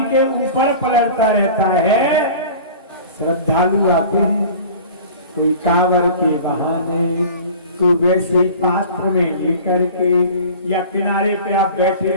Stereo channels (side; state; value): both; inverted; correlation -0.40